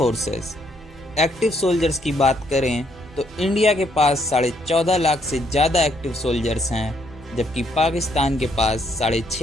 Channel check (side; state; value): both; normal; correlation 0.71